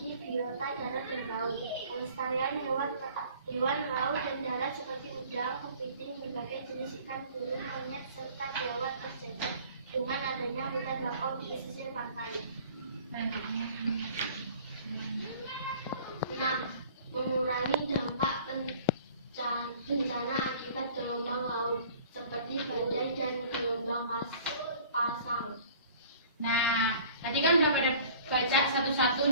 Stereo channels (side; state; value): both; inverted; correlation -0.50